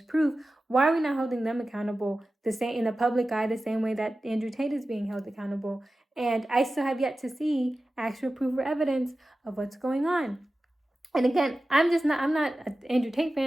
proof, why are we not holding them accountable the same in the public eye, the same way that Andrew Tate is being held accountable? And I still have yet to see actual proof or evidence of what's going on. And again, I'm not an Andrew Tate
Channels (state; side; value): normal; both; correlation 0.95